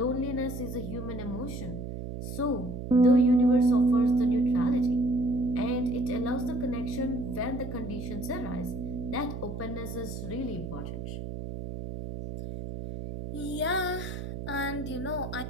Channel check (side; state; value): right; noise; hum, 7 dB below the sound